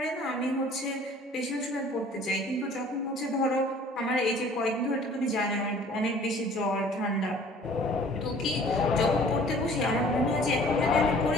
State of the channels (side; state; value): both; normal; correlation 0.51